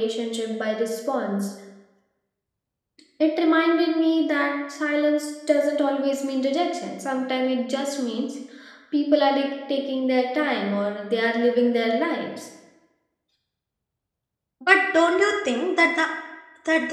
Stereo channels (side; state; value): both; identical; correlation 1.00